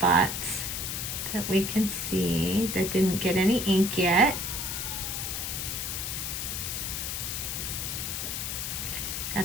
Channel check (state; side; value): noise; left; hiss, 3 dB below the sound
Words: that we can see that didn't get any ink yet.